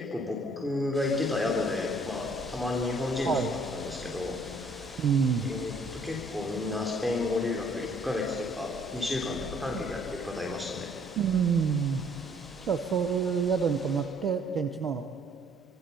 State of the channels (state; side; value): normal; both; correlation 0.61